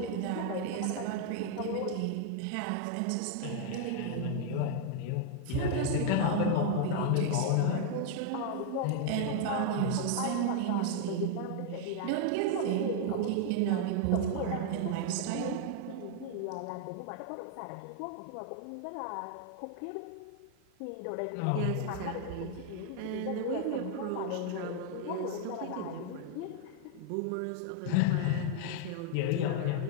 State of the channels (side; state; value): both; different; correlation 0.00